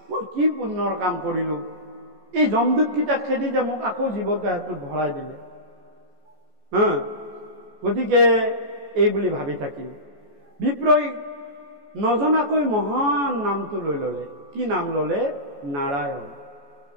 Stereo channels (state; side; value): late; left; 14 ms